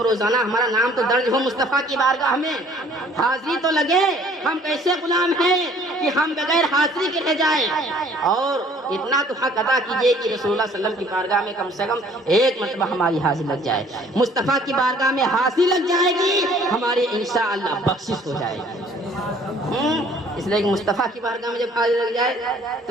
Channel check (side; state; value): both; normal; correlation 0.56